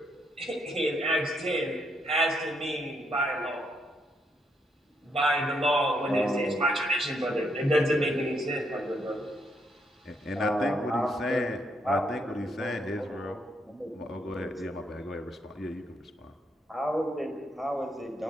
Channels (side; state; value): both; normal; correlation 0.76